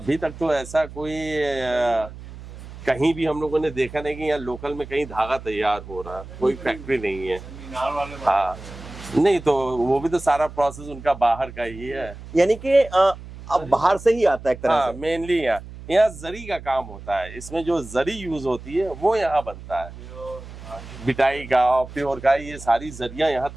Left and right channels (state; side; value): noise; right; hum, 14 dB below the sound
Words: तक तो ऐसा कोई कहीं भी हम लोगों ने देखा नहीं कि यहाँ लोकल में कहीं धागा तैयार हो रहा है। कोई फैक्ट्री नहीं है। हाँ, नहीं तो वो भी तो सारा प्रोसेस उनका बाहर का ही है। यानी कि अब बाहर से ही आता है एक तरह हाँ, से। मेनली यहाँ जरी का काम होता है। इसमें जो जरी यूज होती है वो यहाँ बनता है। बिटाई का और प्योर का, ये सारी जरियां यहाँ